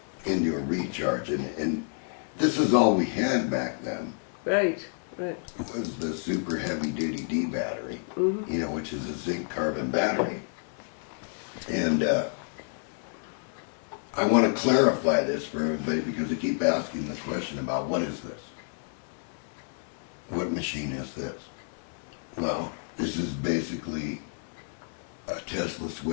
into a recharge. And this is all we had back then. Right. Right. Was the super heavy duty D battery, which is a zinc carbon battery. And I want to clarify this for everybody because they keep asking the question about what is this? What machine is this? Well, this is basically a Tesla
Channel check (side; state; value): right; silent; 58 dB below the other